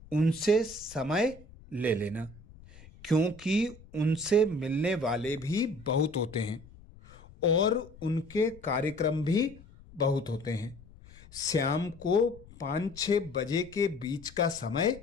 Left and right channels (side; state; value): left; noise; rumble, 21 dB below the sound